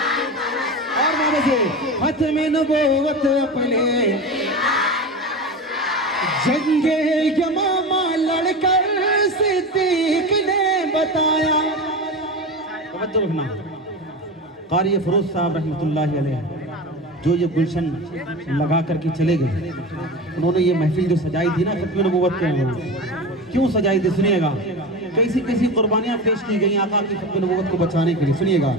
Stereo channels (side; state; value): both; normal; correlation 0.26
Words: और माने से खत्म नबूवत अपने। जंगे यमामा लड़कर सिद्दीक ने बताया। तवज्जो रखना, कारी फरोज साहब रहमतुल्लाहि अलैह जो ये गुलशन लगा करके चले गए, उन्होंने ये महफिल जो सजाई थी ना खत्म नबूवत के, क्यों सजाई थी सुनिएगा। कैसी कैसी कुर्बानियां पेश की गई आका की खत्म नबूवत को बचाने के लिए, सुनिएगा।